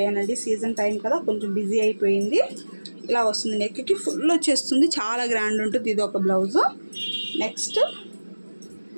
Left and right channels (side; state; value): both; inverted; correlation -1.00